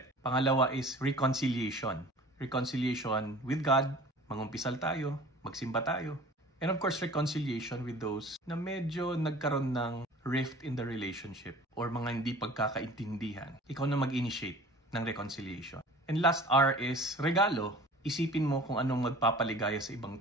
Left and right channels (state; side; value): normal; both; correlation 0.44